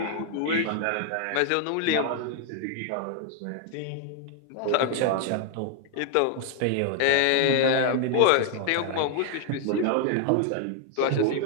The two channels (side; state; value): both; different; correlation 0.00